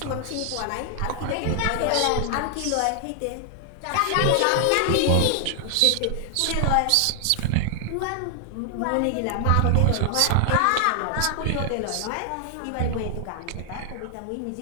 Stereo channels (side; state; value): both; different; correlation 0.00